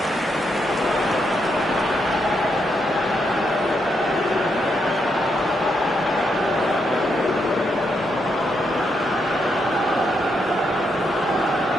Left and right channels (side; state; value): both; normal; correlation 0.80